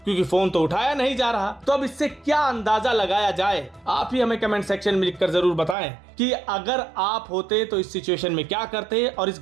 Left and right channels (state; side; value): drops out; left; at 5.8 s